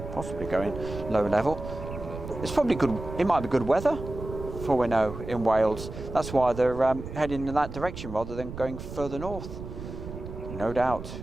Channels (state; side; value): noise; right; rumble, 10 dB below the sound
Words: possibly going low level. It's probably good. It might be good weather, for we know, in Wales. That's why they're heading in that direction rather than going further north. No doubt.